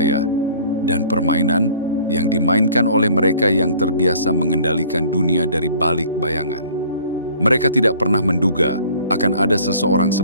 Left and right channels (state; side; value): inverted; both; correlation -0.52